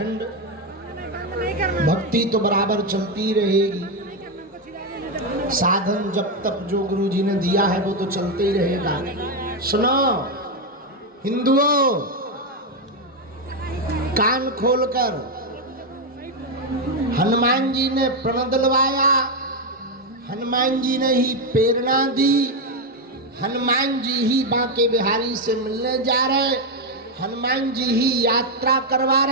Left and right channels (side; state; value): both; normal; correlation 0.05